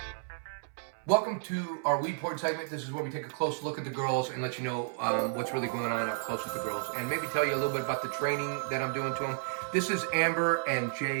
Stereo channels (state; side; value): silent; left; 56 dB below the other